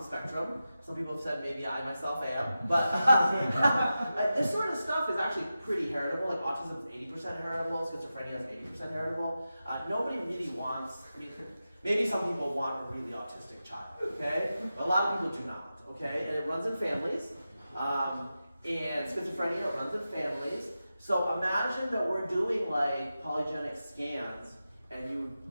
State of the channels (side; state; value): both; inverted; correlation -0.92